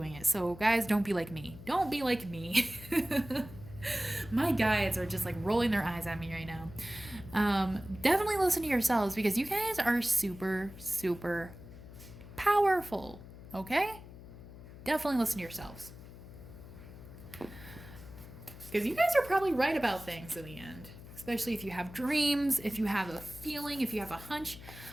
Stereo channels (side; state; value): left; noise; hum, 16 dB below the sound